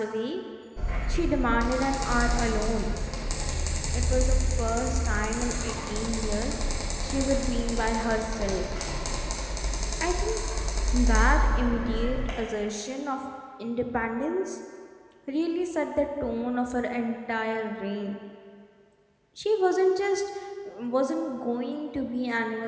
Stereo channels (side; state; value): both; identical; correlation 1.00